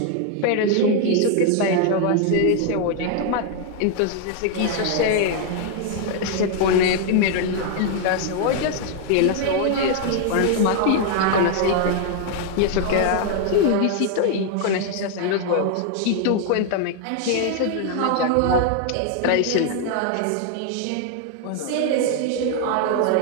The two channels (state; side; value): different; both; correlation 0.00